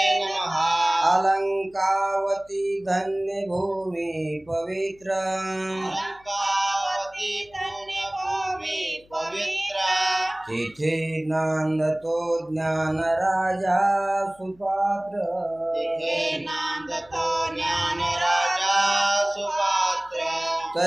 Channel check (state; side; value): noise; left; hum, 29 dB below the sound